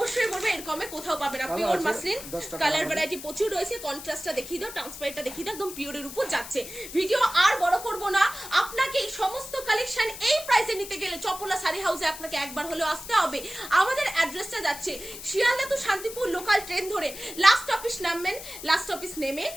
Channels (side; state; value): left; noise; hiss, 12 dB below the sound